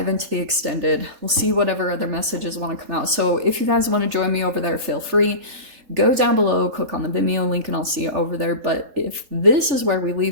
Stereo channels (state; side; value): late; left; 3.7 ms